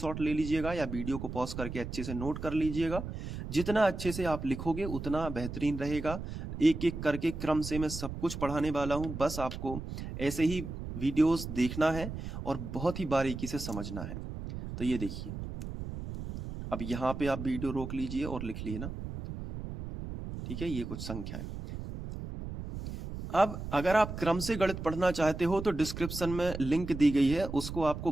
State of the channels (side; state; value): right; noise; rumble, 7 dB below the sound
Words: ले लीजिएगा या वीडियो को पॉज करके अच्छे से नोट कर लीजिएगा। जितना अच्छे से आप लिखोगे उतना बेहतरीन रहेगा। एक एक करके क्रम से मैं सब कुछ पढ़ाने वाला हूं, बस आपको ऐसे ही वीडियोस देखना है और बहुत ही बारीकी से समझना है। तो ये देखिए, अब यहाँ पे आप वीडियो रोक लीजिए और लिख लिए ना, ठीक है? ये कुछ संख्याएं। अब अगर आप क्रम से गणित पढ़ना चाहते हो तो डिस्क्रिप्शन में लिंक दी गई है, उसको आपको